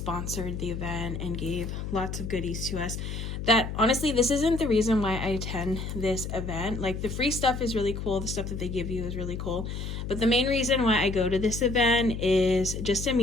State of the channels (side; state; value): left; noise; hum, 6 dB below the sound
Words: the event and gave lots of goodies to us. That honestly, this isn't the reason why I attend this event. Like, the free stuff is really cool. The stuff that they give you is really cool. But the main reason why I go to this event is just to